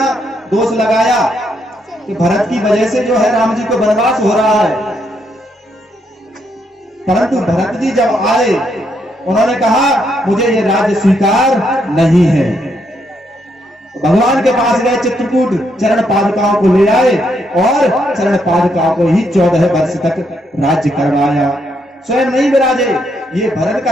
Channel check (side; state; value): both; normal; correlation 0.76